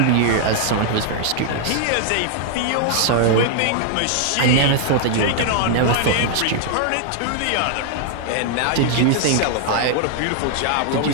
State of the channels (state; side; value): different; both; correlation 0.00